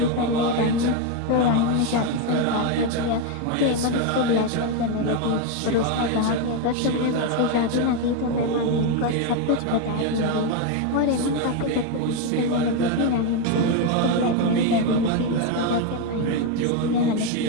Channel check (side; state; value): both; different; correlation 0.02